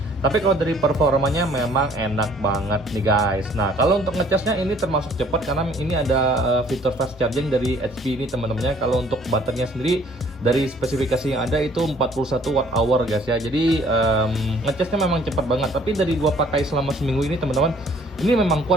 Tapi kalau dari performanya memang enak banget nih guys. Nah kalau untuk ngecasnya ini termasuk cepat karena ini ada fitur fast charging dari HP ini teman-temannya. Kalau untuk baterainya sendiri dari spesifikasi yang ada itu 41 Wh guys ya. Jadi ngecasnya memang cepat banget. Tapi dari gua pakai selama seminggu ini teman-teman, ini memang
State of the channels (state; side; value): normal; both; correlation 0.58